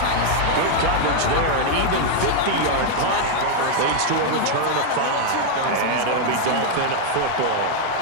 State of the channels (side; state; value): both; different; correlation 0.00